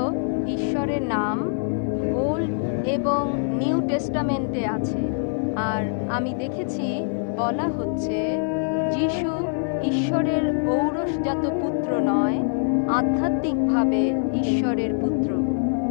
ঈশ্বরের নাম ওল্ড এবং নিউ টেস্টামেন্টে আছে। আর আমি দেখেছি বলা হচ্ছে যিশু ঈশ্বরের ঔরসজাত পুত্র নয়, আধ্যাত্মিকভাবে ঈশ্বরের পুত্র।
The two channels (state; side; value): silent; right; 57 dB below the other